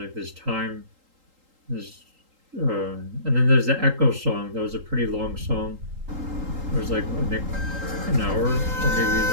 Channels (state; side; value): late; left; 3.8 ms